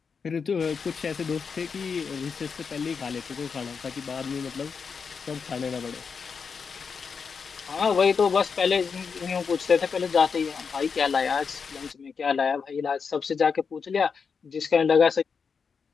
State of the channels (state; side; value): quieter; right; 5.7 dB